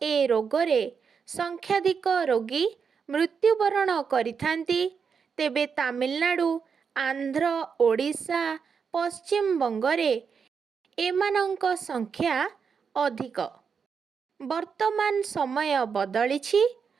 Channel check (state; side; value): quieter; left; 6.2 dB